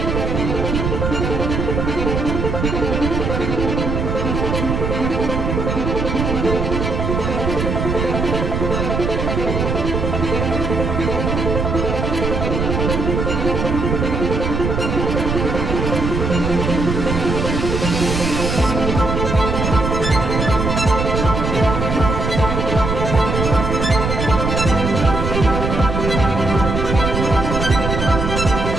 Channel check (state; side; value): noise; right; rumble, 1 dB below the sound